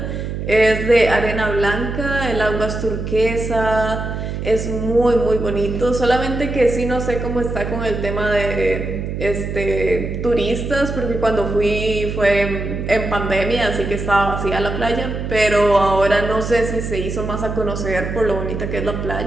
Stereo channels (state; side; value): noise; right; hum, 5 dB below the sound